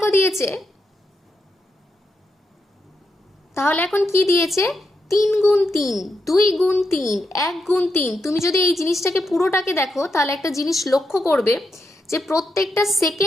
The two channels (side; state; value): both; normal; correlation 0.84